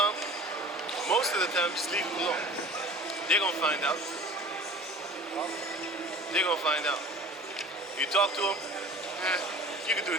most of the time just leave them alone. They're gonna find out. They're gonna find out. You talk to them, you can do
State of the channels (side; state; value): both; normal; correlation 0.42